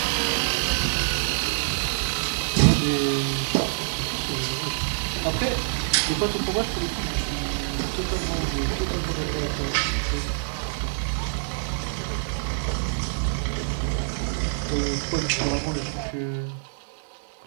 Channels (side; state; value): left; silent; digital silence